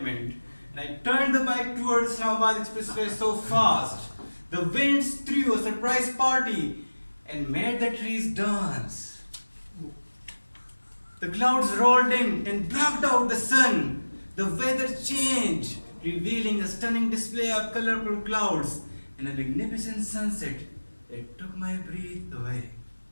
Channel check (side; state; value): both; inverted; correlation -1.00